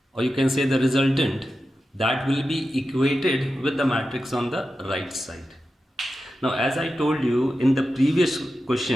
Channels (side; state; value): both; normal; correlation 0.91